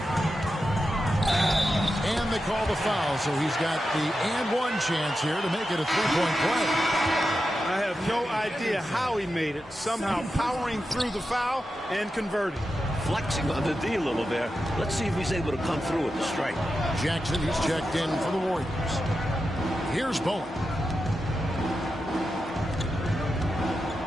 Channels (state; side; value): normal; both; correlation 0.90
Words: And they call the foul, so he's got the and one chance here to make it a 3-point play. I have no idea how he made it. Somehow powering through the foul and converting. Flexing on the D a little there. Let's see if he's able to come through with the strike. Jackson, he's checked in for the Warriors. Here's Bowen.